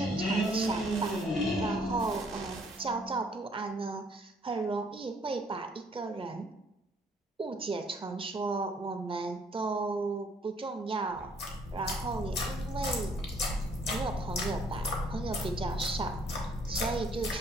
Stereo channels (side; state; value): both; normal; correlation 0.63